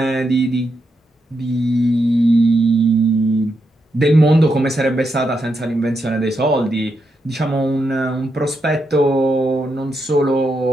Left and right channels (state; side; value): normal; both; correlation 0.83